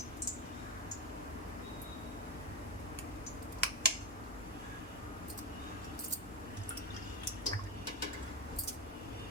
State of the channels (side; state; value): both; normal; correlation 0.13